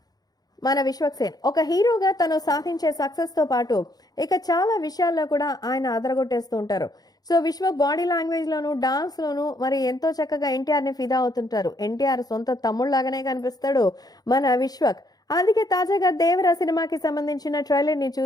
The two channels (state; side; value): late; right; 0.19 ms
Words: మన విశ్వక్ సేన్. ఒక హీరోగా తను సాధించే సక్సెస్తో పాటు ఇక చాలా విషయాల్లో కూడా ఆయన అదరగొట్టేస్తూ ఉంటారు. సో విశ్వక్ బాడీ లాంగ్వేజ్లోను డాన్స్లోను మరి ఎంతో చక్కగా ఎన్టీఆర్ని ఫిదా అవుతుంటారు. ఎన్టీఆర్ సొంత తమ్ముళ్ళలాగానే కనిపిస్తాడు మన విశ్వక్. అందుకే తాజాగా దేవరా సినిమాకి సంబంధించిన ట్రైలర్ని